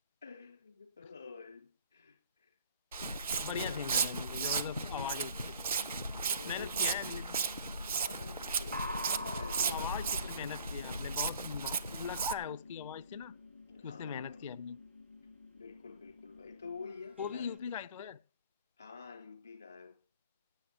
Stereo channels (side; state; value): both; inverted; correlation -0.50